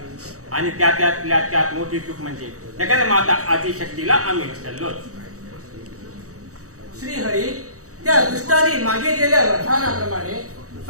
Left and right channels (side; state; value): left; late; 0.65 ms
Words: आणि त्यातल्या त्यात मोठी चूक म्हणजे जगन्माता आदिशक्तीला आम्ही विसरलोच. श्रीहरी त्या दुष्टाने मागितलेल्या वरदानाप्रमाणे